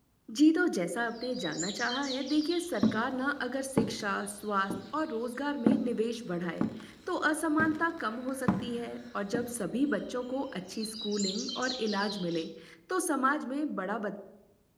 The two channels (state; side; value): identical; both; correlation 1.00